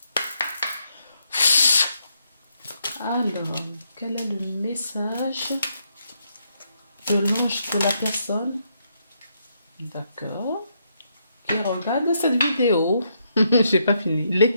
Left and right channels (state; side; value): inverted; both; correlation -0.77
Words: Alors, quel est le message de l'ange de la personne? D'accord. Qui regarde cette vidéo. J'ai pas fini.